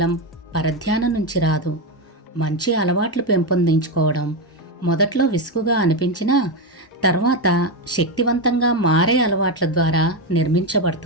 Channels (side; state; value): both; normal; correlation 0.10